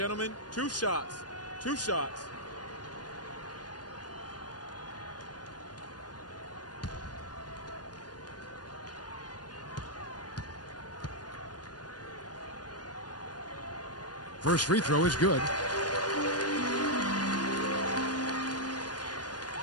2 shots. 2 shots. First free throw is good.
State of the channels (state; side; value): late; right; 0.69 ms